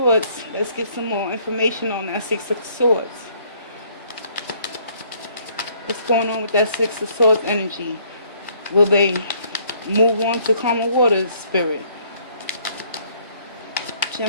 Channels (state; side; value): inverted; both; correlation -0.63